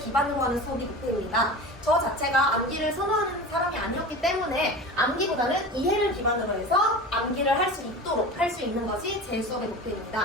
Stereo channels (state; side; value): normal; both; correlation 0.33